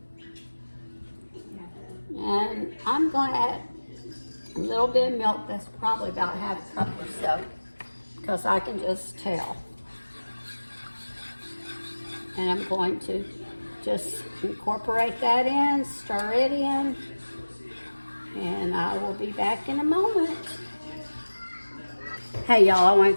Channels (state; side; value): inverted; both; correlation -1.00